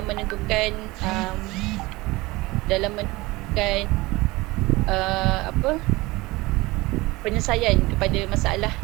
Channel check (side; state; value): left; quieter; 21.4 dB